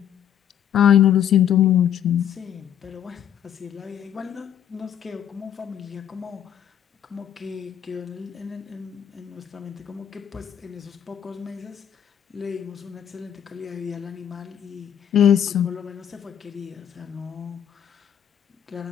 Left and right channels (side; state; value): right; quieter; 9.5 dB